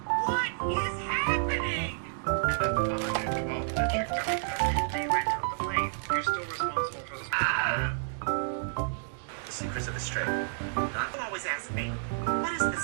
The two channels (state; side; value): silent; left; digital silence